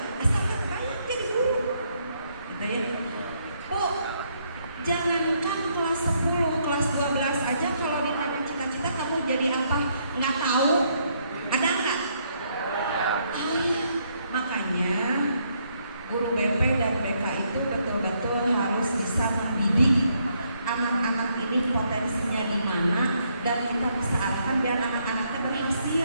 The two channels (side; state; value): both; inverted; correlation -0.73